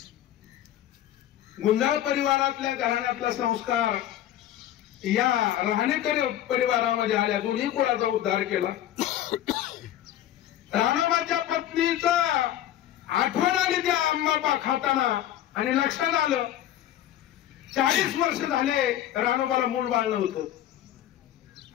गुंजाळ परिवारातल्या घराण्यातला संस्कार या राहणेकरी परिवारामध्ये आल्या. दोन्ही कुळाचा उद्धार केला. रानोबाच्या पत्नीचा आठवण आली त्या आंबा खाताना आणि लक्षात आलं 40 वर्ष झाले रानोबाला मूल बाळ नव्हतं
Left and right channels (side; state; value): right; quieter; 12.2 dB